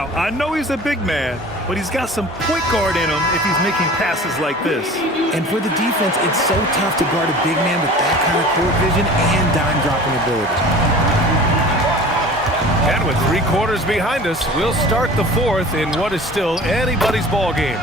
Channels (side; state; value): both; normal; correlation 0.42